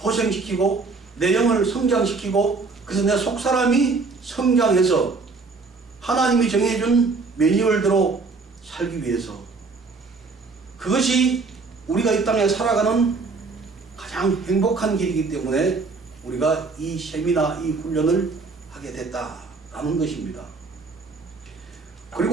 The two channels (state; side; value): quieter; left; 4.2 dB